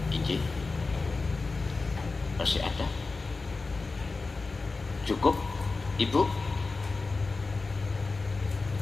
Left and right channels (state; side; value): quieter; right; 3.8 dB